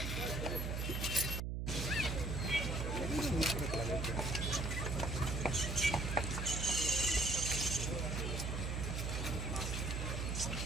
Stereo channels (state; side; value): noise; right; hum, 1 dB below the sound